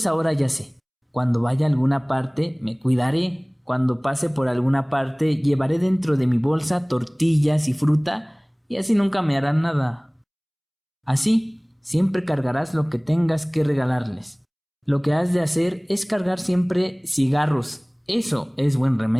ahora ya sé, cuando vaya a alguna parte me cuidaré, cuando pase por alguna parte llevaré dentro de mi bolsa tortillas y fruta y así nunca me harán nada. Así, siempre cargarás lo que tengas que regalarles. Lo que has de hacer es cargar siempre cigarros, eso es buen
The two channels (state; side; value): identical; both; correlation 1.00